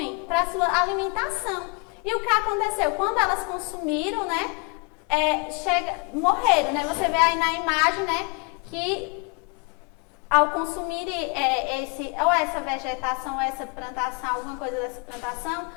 para sua alimentação. E o que aconteceu? Quando elas consumiram, né, morreram, né? Você vê aí na imagem, né, que ao consumir essa vegetação, ou essa plantação, alguma coisa dessa plantação,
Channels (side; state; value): right; quieter; 32.0 dB